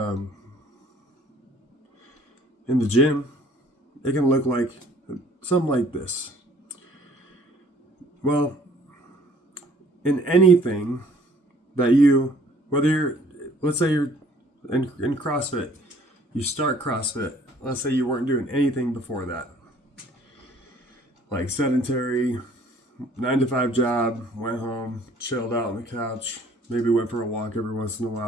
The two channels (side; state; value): both; normal; correlation 0.57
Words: the gym, it can look like something like this. Well, in anything that let's say you're in CrossFit, you start CrossFit, let's say you weren't doing anything before that. Like sedentary, 9-to-5 job, went home, chilled out on the couch, maybe went for a walk every once in a